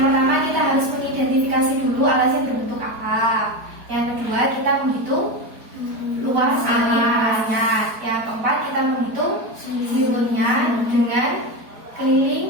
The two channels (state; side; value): late; left; 4.5 ms